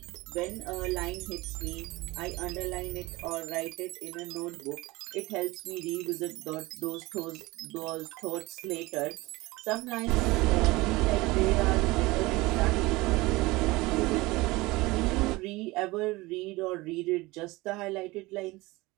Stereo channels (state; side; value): quieter; left; 21.4 dB